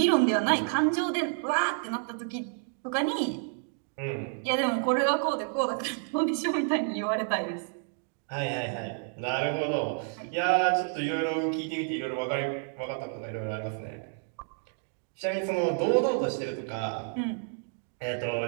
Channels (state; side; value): silent; left; 58 dB below the other